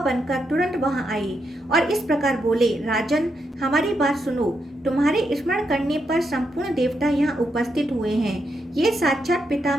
तुरंत वहां आए और इस प्रकार बोले, राजन, हमारी बात सुनो। तुम्हारे स्मरण करने पर संपूर्ण देवता यहाँ उपस्थित हुए हैं। ये साक्षात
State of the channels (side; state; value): both; normal; correlation 0.82